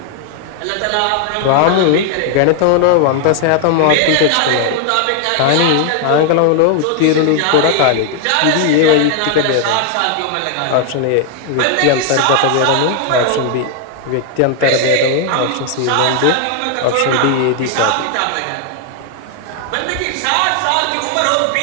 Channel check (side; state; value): both; different; correlation 0.00